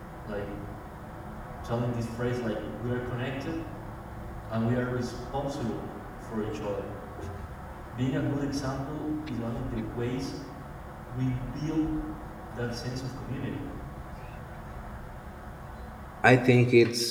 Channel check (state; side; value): identical; both; correlation 1.00